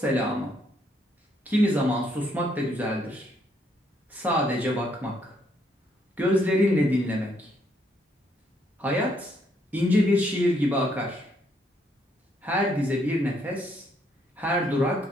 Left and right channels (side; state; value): both; normal; correlation 0.71